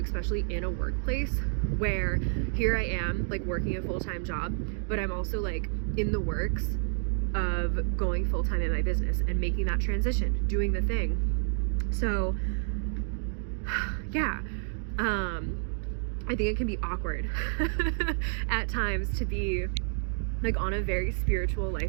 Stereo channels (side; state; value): left; silent; 58 dB below the other